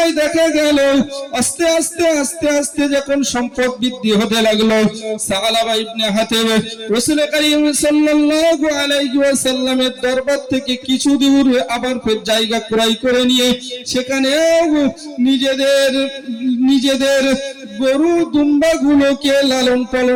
দেখা গেল আস্তে আস্তে যখন সম্পদ বৃদ্ধি হতে লাগলো, সাআলাবা ইবনে হাতিব রাসূল করিম সাল্লাল্লাহু আলাইহি ওয়াসাল্লামের দরবার থেকে কিছু দূর আবার ফের জায়গা ক্রয় করে নিয়ে সেখানে নিজেদের গরু দুম্বা গুলোকে লালন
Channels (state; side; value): identical; both; correlation 1.00